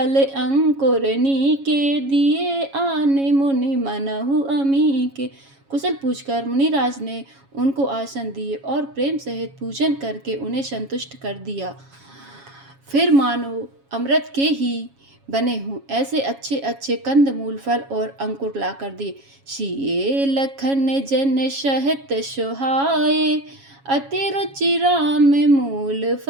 अंकुर नीके, दिए आने मुनि मनहु अमीके। कुशल पूछकर मुनिराज ने उनको आसन दिए और प्रेम सहित पूजन करके उन्हें संतुष्ट कर दिया। फिर मानो अमृत के ही बने हों ऐसे अच्छे अच्छे कंद मूल फल और अंकुर ला कर दिए। सिए लखन जन सहित सुहाए, अति रुचि राम मूल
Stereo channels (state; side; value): late; left; 7.3 ms